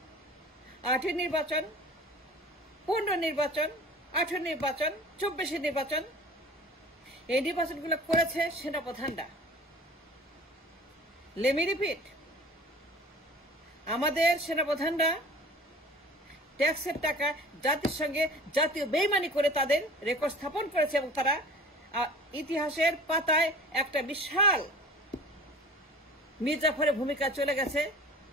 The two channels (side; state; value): both; normal; correlation 0.42